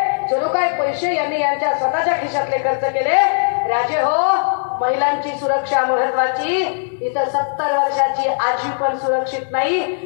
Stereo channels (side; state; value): right; silent; 60 dB below the other